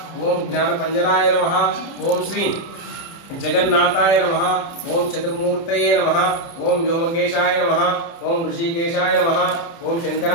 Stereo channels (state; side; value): late; right; 30 ms